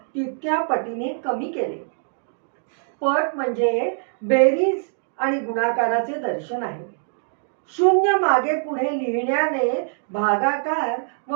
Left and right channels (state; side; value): silent; left; digital silence